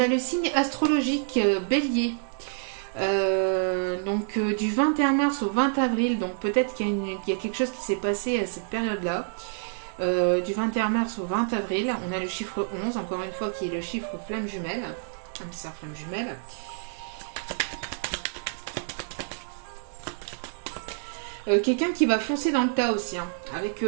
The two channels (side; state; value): left; silent; digital silence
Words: le signe astrologique Bélier. Donc du 21 mars au 20 avril. Donc peut-être qu'il y a quelque chose qui s'est passé à cette période-là. Du 21 mars au 20 avril, on a le chiffre 11, encore une fois, qui est le chiffre flamme jumelle. Âme sœur flamme jumelle. Quelqu'un qui va foncer dans le tas aussi. Hein. Avec